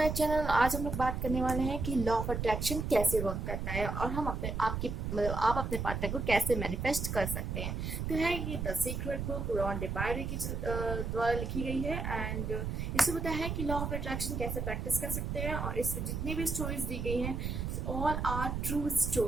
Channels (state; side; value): noise; right; rumble, 3 dB below the sound